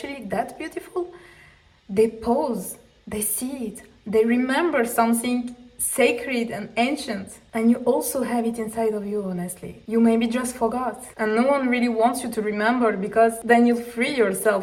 that beautiful, they pause, they see it, they remember something sacred and ancient. And you also have it inside of you, honestly. You maybe just forgot. And no one really wants you to remember, because then you'll free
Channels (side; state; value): both; identical; correlation 1.00